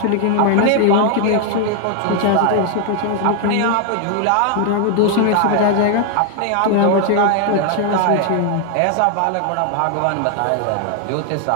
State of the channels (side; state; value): both; different; correlation 0.00